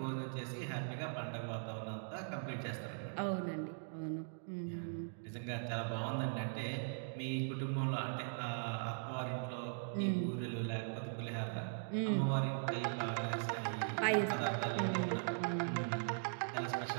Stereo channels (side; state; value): left; silent; digital silence